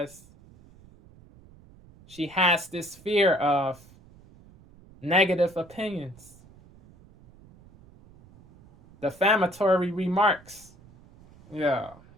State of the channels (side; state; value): right; noise; rumble, 25 dB below the sound